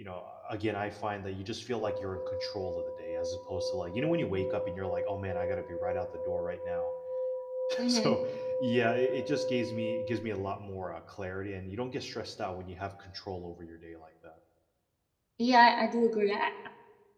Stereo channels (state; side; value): identical; both; correlation 1.00